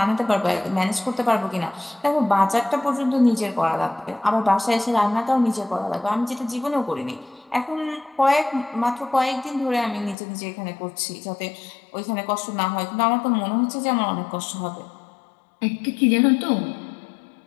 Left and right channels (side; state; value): right; drops out; at 10.2 s